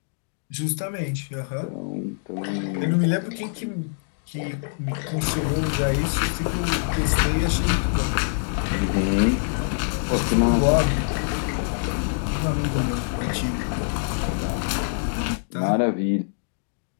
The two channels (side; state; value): right; silent; digital silence